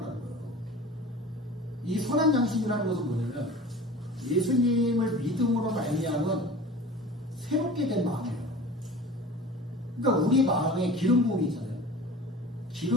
거예요. 이 선한 양심이라는 것은 뭐냐면 예수님을 믿음으로 말미암은 새롭게 된 마음이에요. 그러니까 우리 마음에 기름 부음이 있잖아요.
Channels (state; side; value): normal; both; correlation 0.39